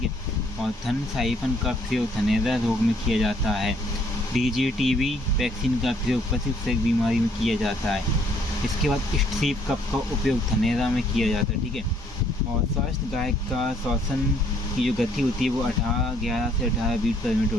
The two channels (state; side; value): normal; both; correlation 0.65